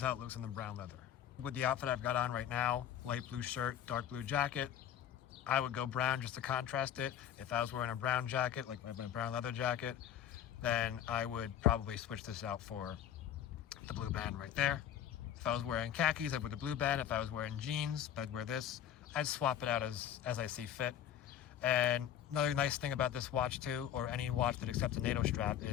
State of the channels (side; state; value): right; quieter; 10.4 dB